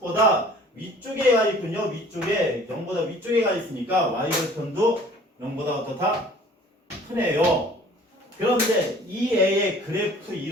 위쪽에 가 있군요. 위쪽에 0보다 위쪽에 가 있으니까 y절편도 0보다 어떻다? 크네요. 그런데 이 애의 그래프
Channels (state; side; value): normal; both; correlation 0.51